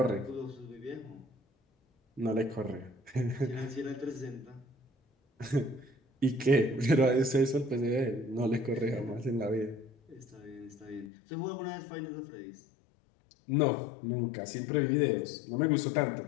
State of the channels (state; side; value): drops out; right; at 11.1 s